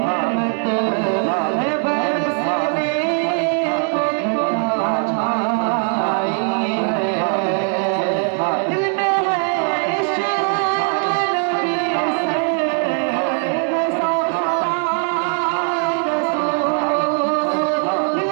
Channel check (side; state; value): left; quieter; 39.5 dB